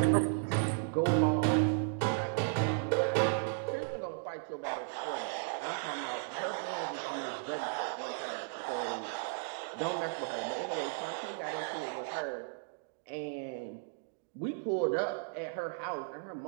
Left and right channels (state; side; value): silent; left; digital silence